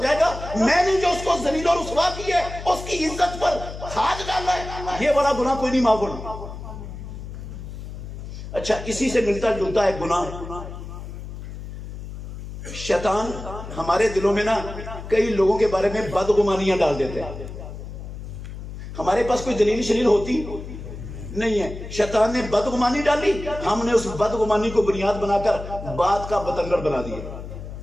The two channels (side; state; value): left; noise; hum, 10 dB below the sound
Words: گا۔ میں نے جو اس کو ذلیل اور رسوا کی ہے، اس کی عزت پر ہاتھ ڈالا ہے، یہ بڑا گناہ کوئی نہیں معاف ہونا۔ اچھا اسی سے ملتا جلتا ہے گناہ، شیطان ہمارے دلوں میں نا کئی لوگوں کے بارے میں بدگمانیاں ڈال دیتے ہیں، ہمارے پاس کوئی دلیل شلیل ہوتی نہیں ہے، شیطان نے بدگمانی ڈالی، ہم نے اس بدگمانی کو بنیاد بنا کر بات کا بتنگڑ بنا دیا،